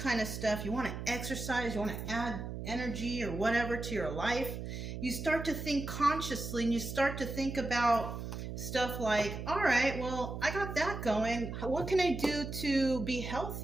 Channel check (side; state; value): right; noise; hum, 7 dB below the sound